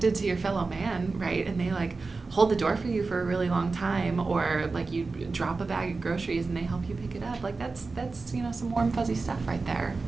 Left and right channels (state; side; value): quieter; left; 3.9 dB